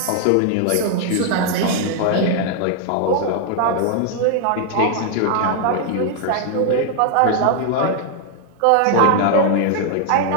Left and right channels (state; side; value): different; both; correlation 0.00